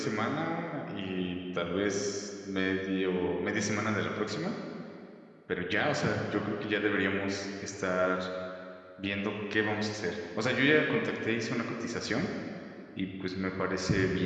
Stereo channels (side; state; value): both; identical; correlation 1.00